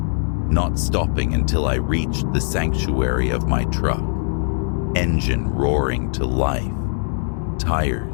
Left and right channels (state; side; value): silent; right; digital silence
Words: not stopping until I reached the sanctuary of my truck, engine roaring to life,